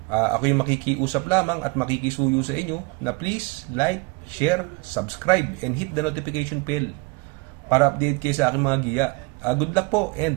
Ako yung makikiusap lamang at makikisuyo sa inyo na please like, share, subscribe, and hit the notification bell para update kayo sa aking mga giya. Good luck po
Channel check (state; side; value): quieter; left; 28.3 dB